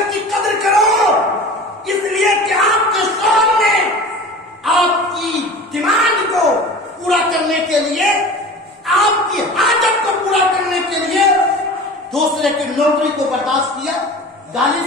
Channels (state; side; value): normal; both; correlation 0.37